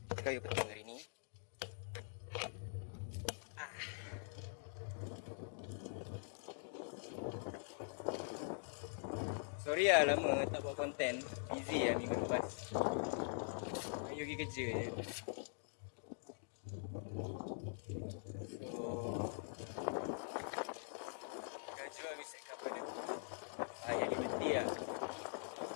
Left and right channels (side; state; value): right; silent; digital silence